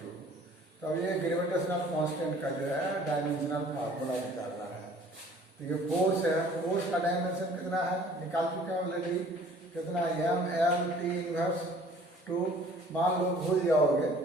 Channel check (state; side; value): normal; both; correlation 0.53